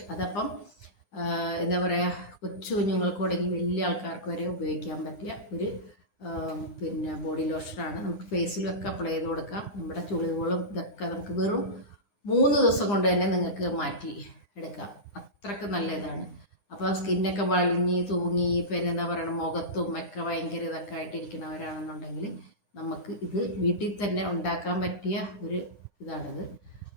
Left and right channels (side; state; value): right; late; 9.9 ms